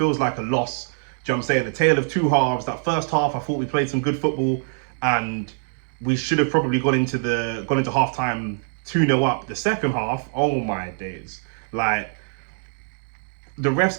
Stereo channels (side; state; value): left; silent; digital silence